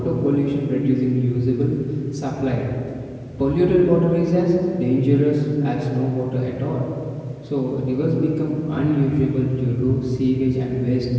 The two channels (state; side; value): identical; both; correlation 1.00